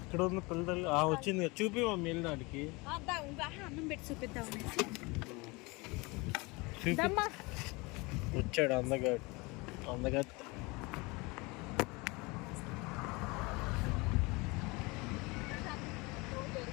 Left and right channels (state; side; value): quieter; right; 25.7 dB